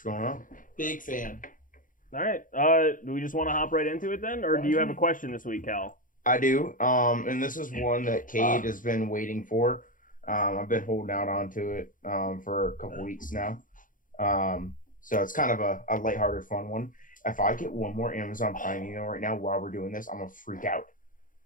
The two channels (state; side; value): late; right; 0.39 ms